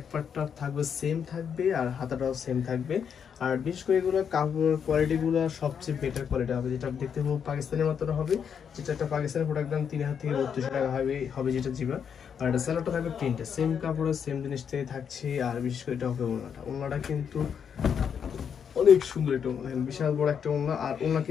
পার্টটা থাকবে সেম থাকবে আর হাতাটাও সেম থাকবে। আর বিশেষ করে এগুলো কাপড় কোয়ালিটিগুলো সবচেয়ে বেটার কোয়ালিটি হবে, যেটা দেখতে খুব পাকিস্তানের মতো হবে, যেটা একটা পাকিস্তানের প্রোডাক্ট দাম 3000 থেকে 32,000 টাকা হবে যেটা জিবা। আর এটা সেলারটা থাকবে প্রিন্টে সেম কাপড়ের সেম জিনিস থেকে থাকছে। আর বিশেষ করে এটা হবে ওড়নাটা কিন্তু অনেক সুন্দর একটা ওড়না, দেখেন বিশাল বড় একটা ওড়না। আর ওড়না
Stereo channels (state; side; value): quieter; right; 7.4 dB